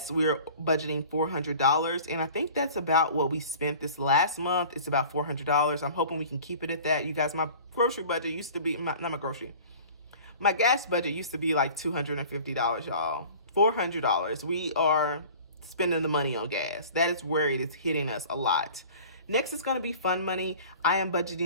we're budgeting $400. And I think that's about what we spent this last month. It's about $400. I'm hoping we can keep it at that. You guys, my grocery budget used to be, my gas budget used to be like $250, y'all. $400. We are spending the money on gas. That is where it is hitting us a lot. Next is going to be fun money. I am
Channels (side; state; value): both; inverted; correlation -0.44